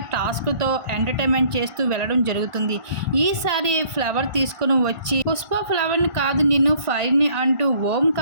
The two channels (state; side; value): late; left; 1.5 ms